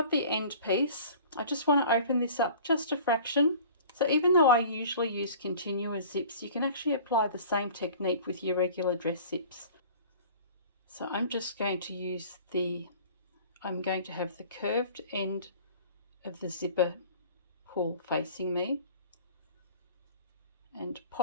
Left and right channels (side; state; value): both; inverted; correlation -0.45